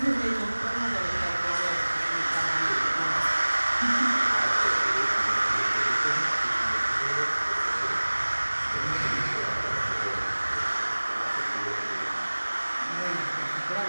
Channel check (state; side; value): inverted; both; correlation -1.00